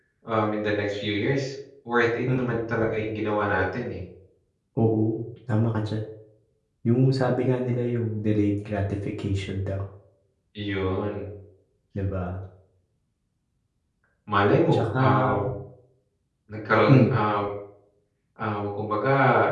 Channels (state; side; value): identical; both; correlation 1.00